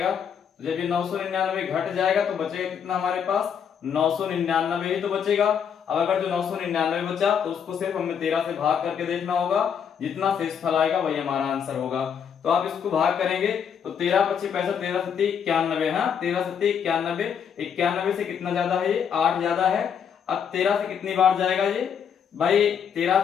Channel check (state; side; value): quieter; right; 7.6 dB